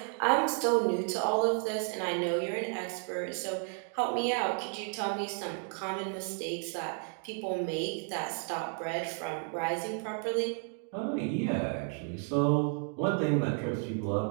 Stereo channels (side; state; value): left; quieter; 39.4 dB